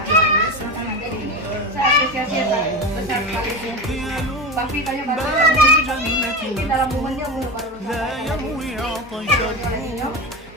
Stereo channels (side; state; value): both; normal; correlation 0.23